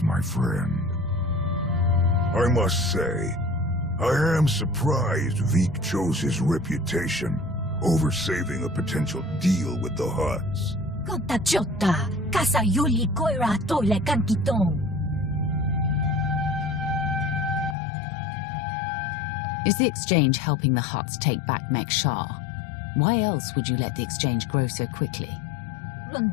my friend. I must say, I am surprised Veek chose his reputation over saving a potential deal with the Hutts. Kota chota, kasa yuli koira toile kankitong. Is the exchange helping the Hutts take back Mek-Sha? Why else would you let the exchange grow so quickly? In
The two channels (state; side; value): drops out; right; at 17.8 s